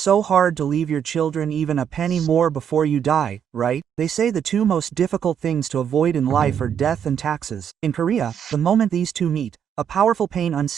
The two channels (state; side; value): quieter; left; 8.4 dB